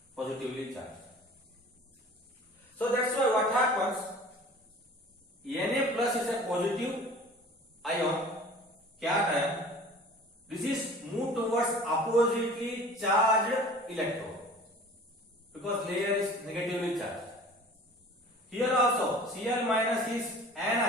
Positively charged. So that's why what happens, Na plus is a positive ion, cation. This is moved towards oppositely charged electrode because layer is negatively charged. Here also Cl minus is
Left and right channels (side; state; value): both; normal; correlation 0.44